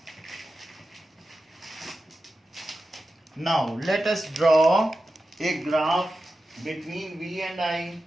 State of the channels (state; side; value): normal; both; correlation 0.92